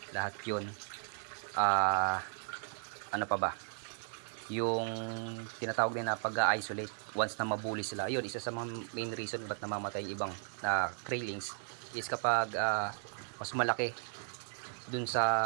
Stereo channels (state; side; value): silent; left; digital silence